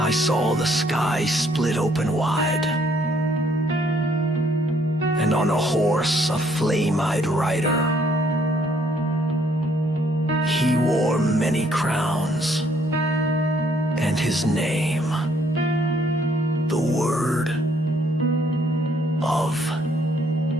saw the sky split open wide, and on a horse a flame-eyed rider. He wore many crowns, and his name, the Word of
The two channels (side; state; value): both; normal; correlation 0.66